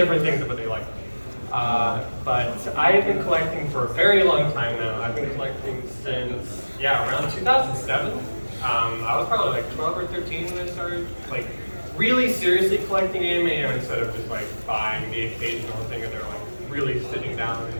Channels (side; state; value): both; inverted; correlation -1.00